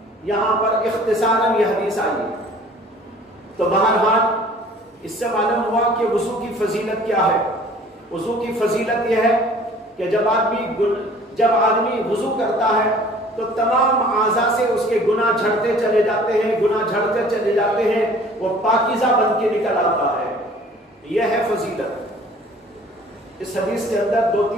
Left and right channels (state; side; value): normal; both; correlation 0.51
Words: یہاں پر اختصاراً یہ حدیث آئی۔ تو بہرحال اس سے معلوم ہوا کہ وضو کی فضیلت کیا ہے۔ وضو کی فضیلت یہ ہے کہ جب آدمی وضو کرتا ہے تو تمام اعضاء سے اس کے گناہ جھڑتے چلے جاتے ہیں، گناہ جھڑتے چلے جاتے ہیں، وہ پاکیزہ بن کے نکل آتا ہے، یہ ہے فضیلت۔ اس حدیث کے اندر